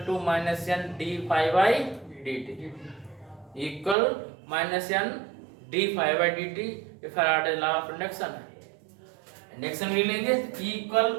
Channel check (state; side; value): drops out; left; at 4.0 s